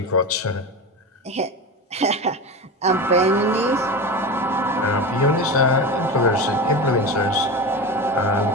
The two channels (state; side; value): normal; both; correlation 0.25